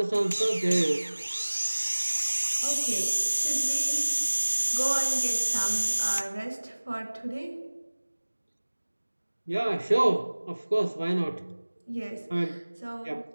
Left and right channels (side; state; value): both; inverted; correlation -1.00